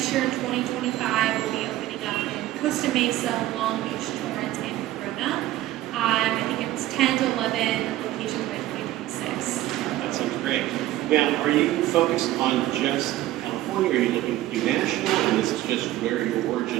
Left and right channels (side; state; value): left; quieter; 15.1 dB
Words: year in 2025, we'll be opening up in Costa Mesa, Long Beach, Torrance, and Corona. I think it's 10 to 11 locations by 2026. That sounds great. Now, are you focused on just California, or are you looking to do national, and this is just where your